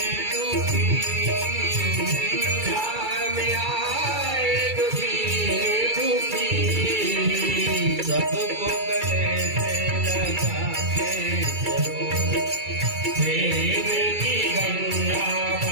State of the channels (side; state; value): left; late; 2.3 ms